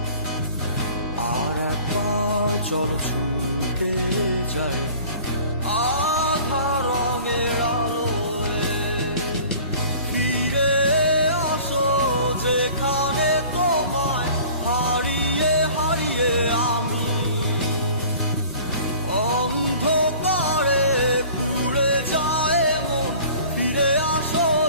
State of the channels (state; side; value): inverted; both; correlation -0.47